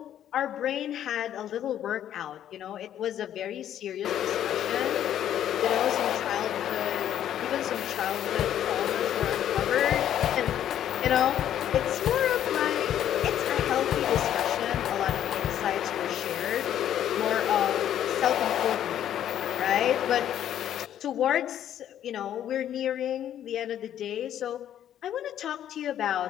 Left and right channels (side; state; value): right; quieter; 10.8 dB